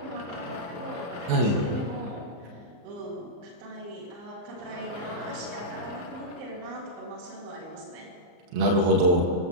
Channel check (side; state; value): left; late; 34 ms